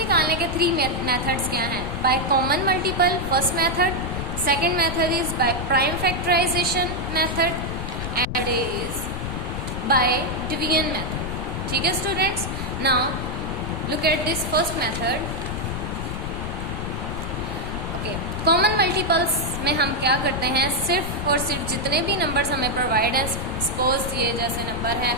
के 3 मेथड्स क्या हैं? By common multiple first method, second method is by prime factorization method and is by division method. ठीक है students, now look at this first method. Okay, common multiples में हम क्या करते हैं? सिर्फ और सिर्फ जितने भी नंबर्स हमें प्रोवाइड है, सपोज ये जैसे नंबर है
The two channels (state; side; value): noise; left; rumble, 5 dB below the sound